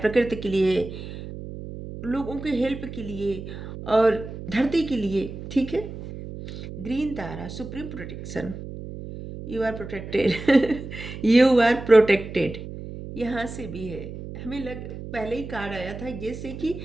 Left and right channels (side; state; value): right; noise; hum, 10 dB below the sound